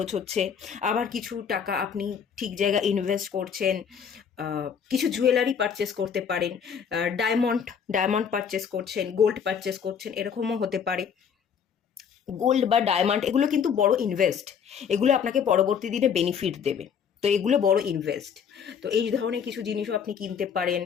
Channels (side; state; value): right; quieter; 7.3 dB